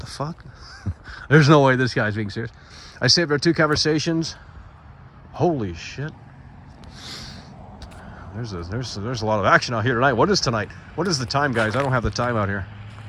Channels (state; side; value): identical; both; correlation 1.00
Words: fuck? There's no way this guy's being serious. I saved our 2 conversations. Holy shit. There's a lot of action out here tonight. What is tonight? What is the time, guys? I don't have the time out here.